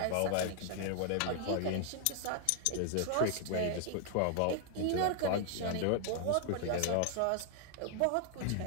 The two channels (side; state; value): both; different; correlation 0.00